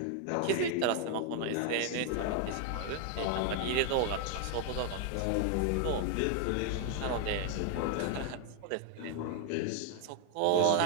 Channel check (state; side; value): different; both; correlation 0.00